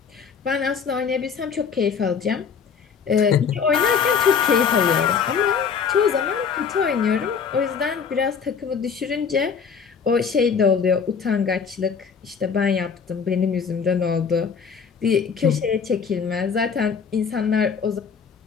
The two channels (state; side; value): quieter; right; 6.3 dB